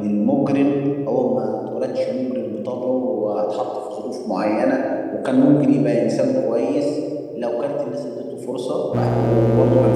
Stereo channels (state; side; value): identical; both; correlation 1.00